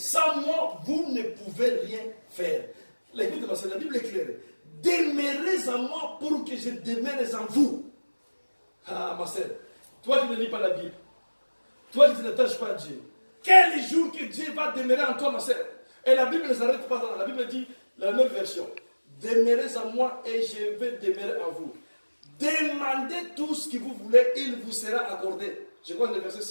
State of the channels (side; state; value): both; inverted; correlation -1.00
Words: moi, vous ne pouvez rien faire. L'écoute de la Bible est claire. Demeurez en moi pour que je demeure en vous. Ah, ma sœur, toi qui ne lis pas la Bible, toi qui ne t'attaches pas à Dieu, quel jour que Dieu va demeurer en toi, ma sœur? Et la Bible ne s'arrête pas là. La Bible dit, la même version, demeurez en moi et je vais demeurer en vous. Demandez tout ce que vous voulez, il vous sera accordé. Je crois que le verset